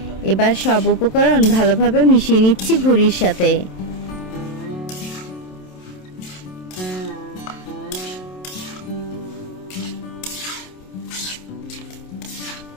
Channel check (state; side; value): late; right; 27 ms